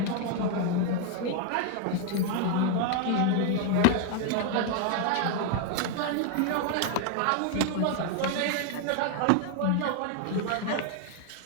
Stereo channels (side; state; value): both; different; correlation 0.00